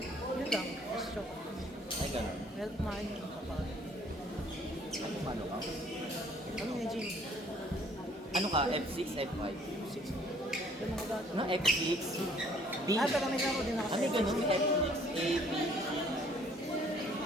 Yun lang, just joke. Ay, gano'n. Well, kumain yung kapag. Ano, mano ka? Ano yung gym? Ano ka? F6, F5? 6. Yung mga gato. Ano? X6? B? Pero may laro din ako sa Ano gano'n? May F6, A, B?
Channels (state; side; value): normal; both; correlation 0.59